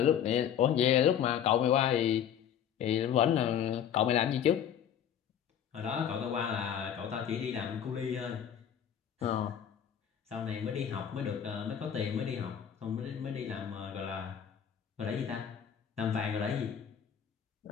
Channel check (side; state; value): right; quieter; 9.0 dB